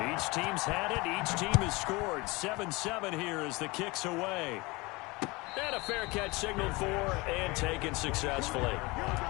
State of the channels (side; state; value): right; quieter; 24.1 dB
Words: Each team's had it. Each team has scored. 7-7 here as the kick's away. And a fair catch signaled for and taken successfully.